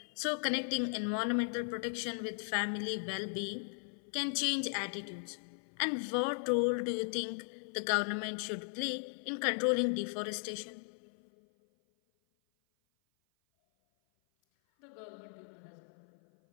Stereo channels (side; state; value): right; silent; 53 dB below the other